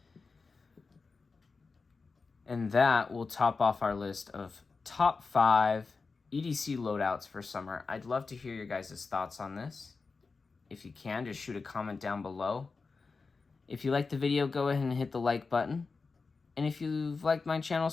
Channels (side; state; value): right; quieter; 4.4 dB